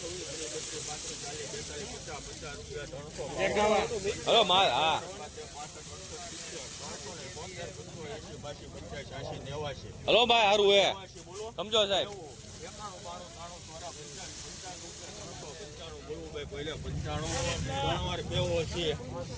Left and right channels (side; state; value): both; identical; correlation 1.00